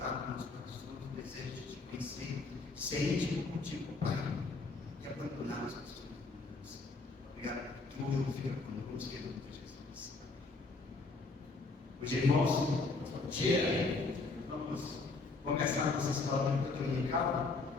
nos corações o desejo de te conhecer, ser íntimo contigo, Pai, e abandonar as pessoas. Obrigado por tudo, fica conosco, em nome de Jesus. Hoje, irmãos, bom dia. Vamos começar a nossa escola dominical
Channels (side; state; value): right; quieter; 3.7 dB